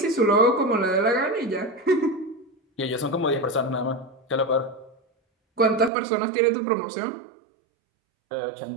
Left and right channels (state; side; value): drops out; left; at 5.9 s